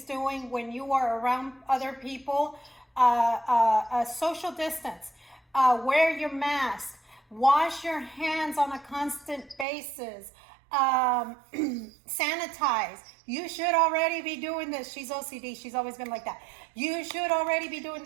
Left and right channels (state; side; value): drops out; left; at 9.7 s